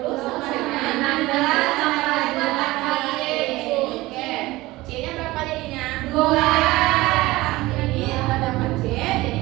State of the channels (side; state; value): left; quieter; 19.4 dB